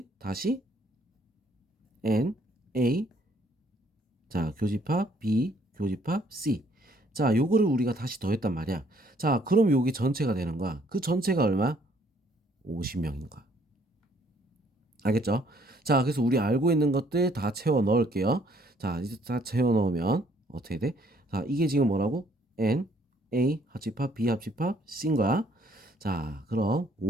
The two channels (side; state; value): both; normal; correlation 0.64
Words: 다시 N, A, 자, 교집합 B, 교집합 C. 자, 요거를 우리가 다시 더했단 말이야. 자, 그럼 여기 전체가 되는 거야. 그 전체가 얼마? 50명인 거야. 알겠죠? 자, 그래서 우리 알고 있는 것들 다 채워 넣을게요. 자, 이제 다 채워 넣으면 어떻게 돼? 자, 이게 지금 뭐라고? N, A 합집합, B 합집합, C인 거야. 자, 그럼